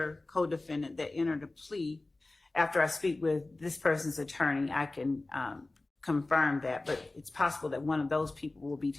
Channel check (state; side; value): quieter; right; 3.0 dB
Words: co-defendant that entered a plea, after I speak with this person's attorney, I can confirm that, but it's possible that one of those people will be